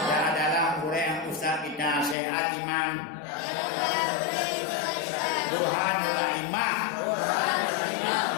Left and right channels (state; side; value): drops out; right; at 2.1 s